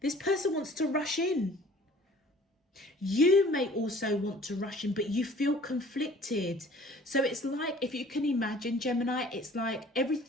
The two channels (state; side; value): normal; both; correlation 0.51